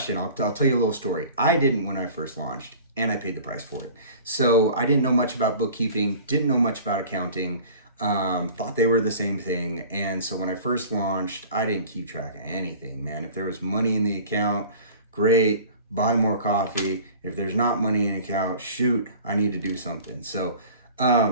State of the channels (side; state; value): both; inverted; correlation -0.43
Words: I'll tell you a little story. I didn't when I first launched, and I paid the price for it. So I didn't know much about bookkeeping, didn't know much about accounting. Thought they were the same thing. And so when I first launched, I didn't keep track of anything, man. If there was money in the account, great, buy more coffee. If there's not money in the account, shoot, I need to do something. So